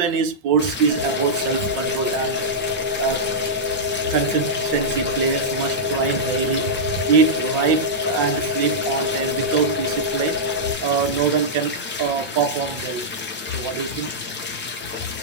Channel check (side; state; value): both; normal; correlation -0.10